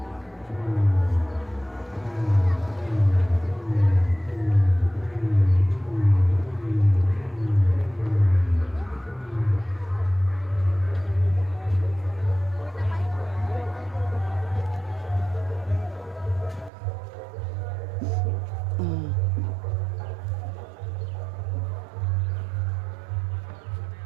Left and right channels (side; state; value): left; drops out; at 16.7 s